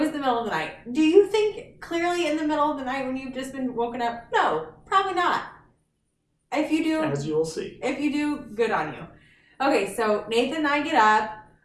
the middle of the night. Do you think clearly in the middle of the night when you've just been woken up? No, probably not. If you do, as you will see. If you do, good on you. Okay, so Nathan and I get up.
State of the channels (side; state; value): both; identical; correlation 1.00